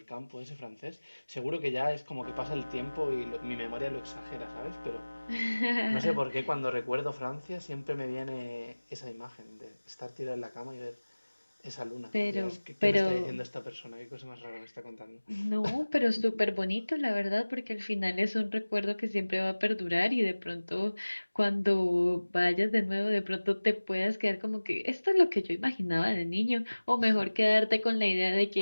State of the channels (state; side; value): inverted; both; correlation -1.00